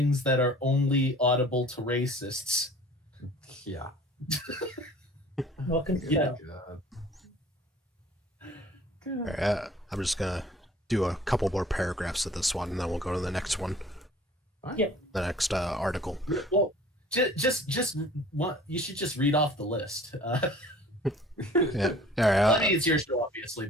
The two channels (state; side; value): normal; both; correlation 0.49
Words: that are only audible to racists. Yeah. Welcome to Yeah. Right, I'm just gonna do a couple more paragraphs of this one, and then we'll go to the next one. Yeah. The next article. Well, just what you should just read off the list. Yeah. All right. I mean, it's your show, obviously,